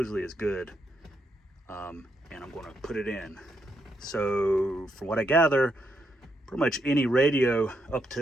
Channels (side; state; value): both; normal; correlation 0.80